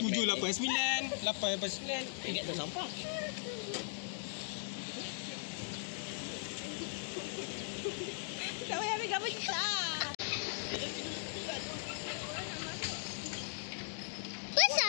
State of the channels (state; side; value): silent; right; digital silence